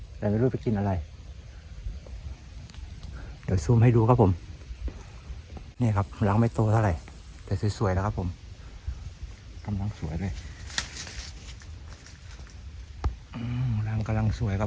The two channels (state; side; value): identical; both; correlation 1.00